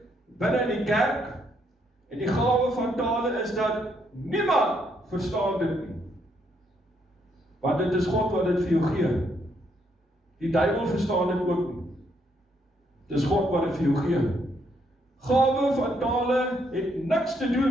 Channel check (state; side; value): normal; both; correlation 0.73